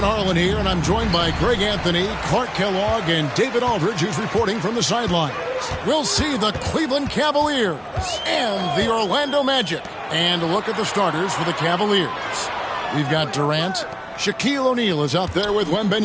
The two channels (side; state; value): both; identical; correlation 1.00